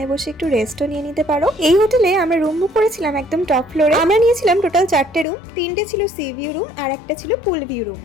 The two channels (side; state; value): right; drops out; at 5.2 s